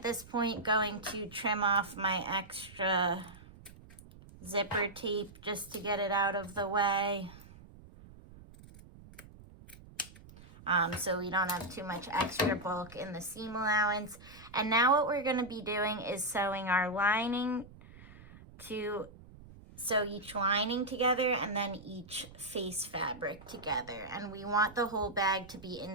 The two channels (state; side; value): noise; right; rumble, 20 dB below the sound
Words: this point going to trim off my extra zipper tape just to get it out of the way. So we don't have too much extra bulk in the seam allowance. And now what we're going to be doing is sewing our lining to sew each lining together and then each face fabric together. And we want the whole bag to be